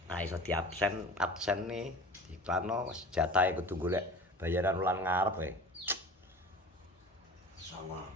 Ah iso diabsen nih diklano wis jatahe kudu golek bayaran wulan ngarep wae. Sama.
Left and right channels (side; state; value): both; normal; correlation 0.38